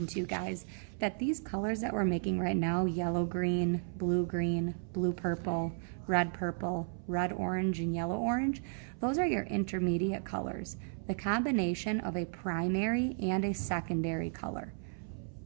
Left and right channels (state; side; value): silent; left; 55 dB below the other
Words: to you guys that these colors that we're making right now, yellow green, blue purple, red orange, and yellow orange, those are your intermediate colors. The combination of a primary and a secondary color.